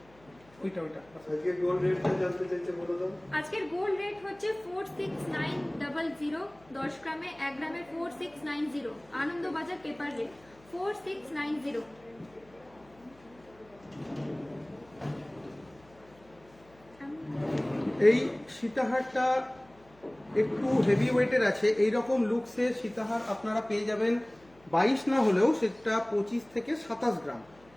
ওইটা আজকে গোল্ড রেটটা জানতে চাইছে, বলে দাও। আজকের গোল্ড রেট হচ্ছে 46900, 10 গ্রামে 1 গ্রামে 4690, আনন্দবাজার পেপার রেট 4690। এই সীতাহারটা একটু হেভি ওয়েটের আছে। এই রকম লুকসে সীতাহার আপনারা পেয়ে যাবেন 22 না হলেও সেটা 25 থেকে 27 গ্রাম।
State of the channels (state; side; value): noise; left; hum, 28 dB below the sound